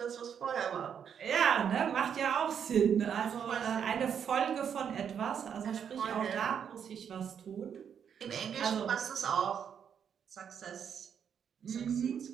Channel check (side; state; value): left; quieter; 7.9 dB